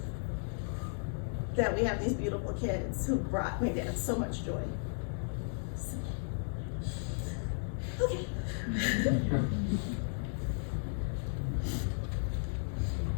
That we have these beautiful kids who brought my dad so much joy. I'm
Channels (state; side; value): silent; right; 55 dB below the other